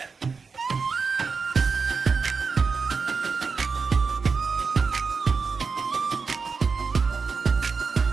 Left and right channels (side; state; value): left; quieter; 5.0 dB